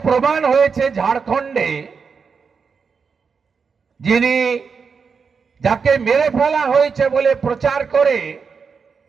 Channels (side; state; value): left; quieter; 5.6 dB